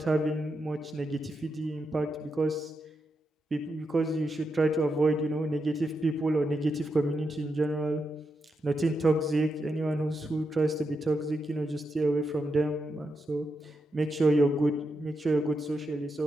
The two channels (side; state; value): both; normal; correlation 0.85